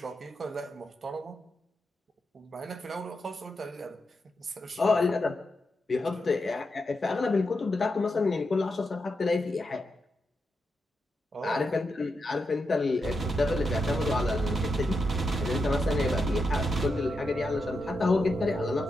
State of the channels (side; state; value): both; normal; correlation 0.86